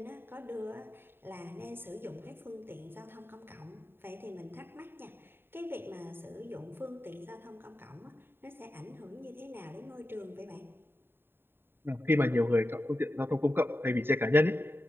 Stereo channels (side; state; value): left; late; 0.11 ms